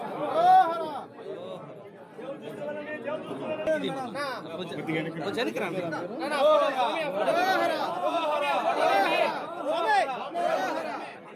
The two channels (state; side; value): identical; both; correlation 1.00